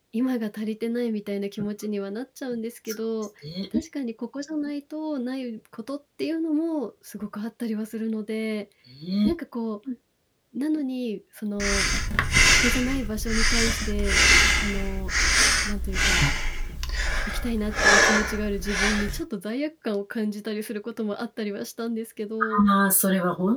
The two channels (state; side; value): identical; both; correlation 1.00